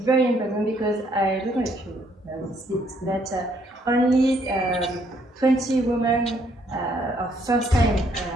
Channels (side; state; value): both; normal; correlation 0.68